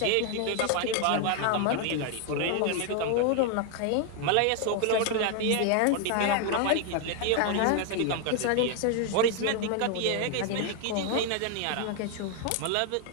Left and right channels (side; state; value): both; different; correlation 0.00